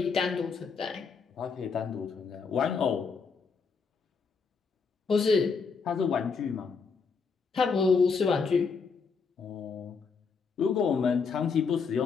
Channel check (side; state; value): right; quieter; 5.3 dB